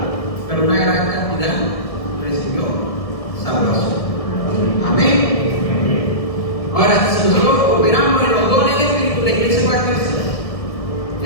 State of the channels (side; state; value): right; late; 1.7 ms